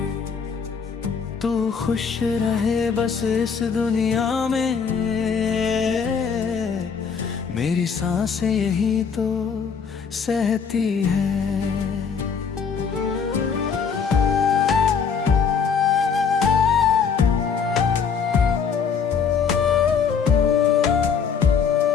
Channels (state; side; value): quieter; right; 6.3 dB